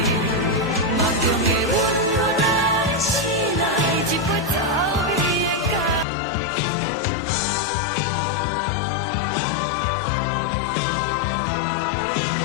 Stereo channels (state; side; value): drops out; right; at 6.1 s